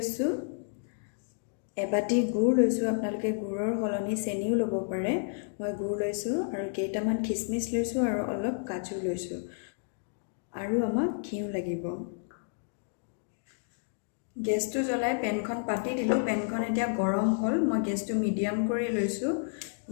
এবাটি গুড় লৈছোঁ। আপোনালোকে গুড়ৰ সলনি চেনিও ল'ব পাৰে। মই গুড় লৈছোঁ আৰু কেইটামান খিচমিচ লৈছোঁ আৰু অলপ কাজু লৈছোঁ। আৰু আমাক ঘিউ লাগিব। গেছটো জ্বলাই পেনখন পাতি দিলোঁ। পেনখন এতিয়া গৰম হ'ল। মই গেছটো মিডিয়াম কৰি লৈছোঁ।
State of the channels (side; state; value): right; silent; digital silence